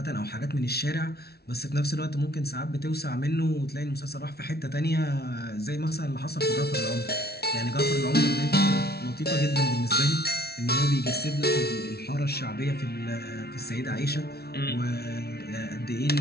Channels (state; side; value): late; right; 0.46 ms